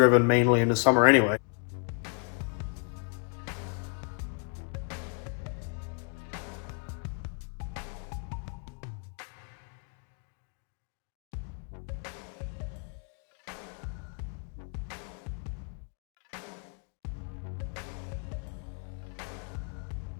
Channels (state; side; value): quieter; right; 39.1 dB